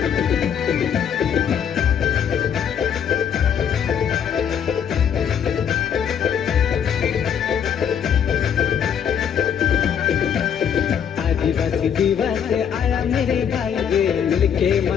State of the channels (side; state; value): right; quieter; 8.2 dB